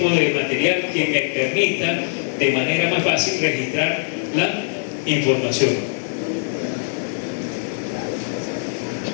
de material que me permita de manera más fácil registrar la información.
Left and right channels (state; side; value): silent; right; 63 dB below the other